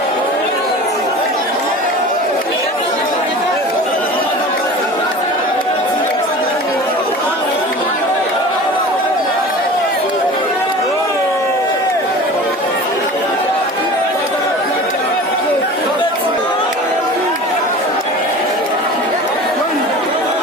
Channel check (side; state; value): both; normal; correlation 0.37